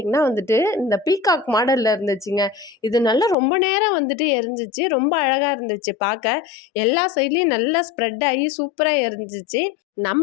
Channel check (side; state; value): right; drops out; at 3.4 s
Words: வந்துட்டு இந்த பீகாக் மாடலில் இருந்துச்சுங்க. இது நல்லா ரொம்ப நேரம் வந்துட்டு எரிஞ்சிச்சு. ரொம்ப அழகாக இருந்துச்சு பார்க்க. எல்லா சைட்லேயும் நல்லா ஸ்ப்ரெட் ஆகி சூப்பராக எரிஞ்சிச்சு.